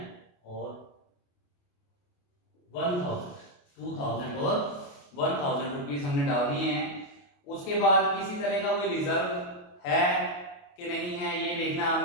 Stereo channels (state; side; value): late; right; 28 ms